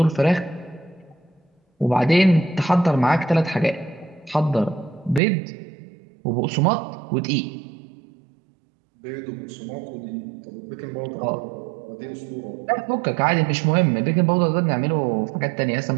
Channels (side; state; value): left; drops out; at 5.2 s